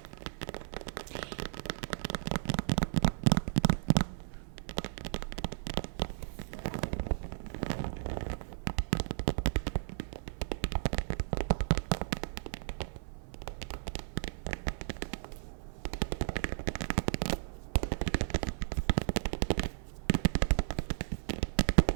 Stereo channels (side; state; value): left; silent; 55 dB below the other